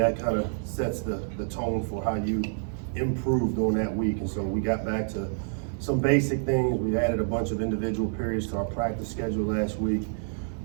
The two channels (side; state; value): left; silent; digital silence